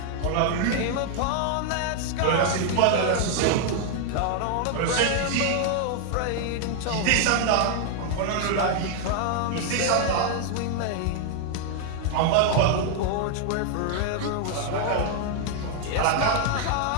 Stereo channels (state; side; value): different; both; correlation 0.00